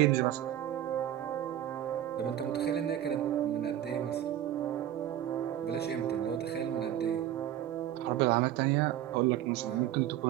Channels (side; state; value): left; quieter; 11.9 dB